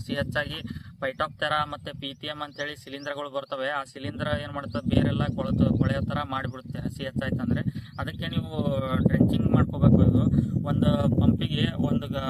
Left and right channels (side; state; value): both; identical; correlation 1.00